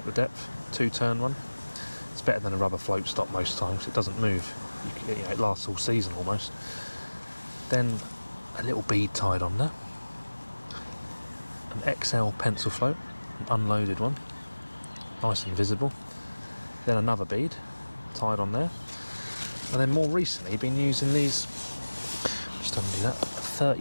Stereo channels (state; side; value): inverted; both; correlation -1.00